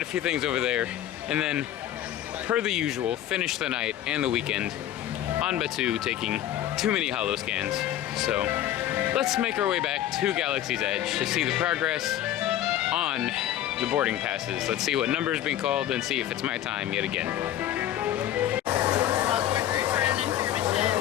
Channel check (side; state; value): right; quieter; 12.2 dB